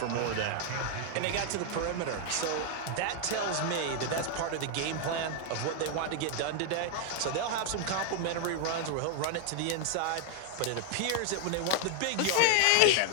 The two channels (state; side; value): different; both; correlation 0.00